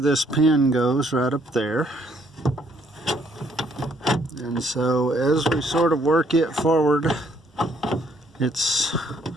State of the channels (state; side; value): normal; both; correlation 0.67